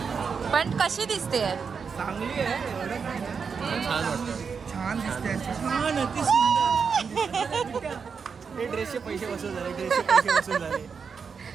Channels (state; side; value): quieter; left; 5.9 dB